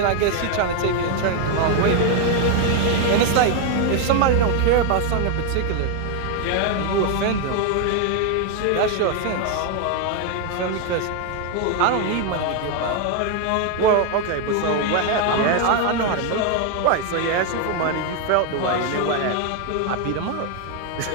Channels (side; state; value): both; different; correlation 0.01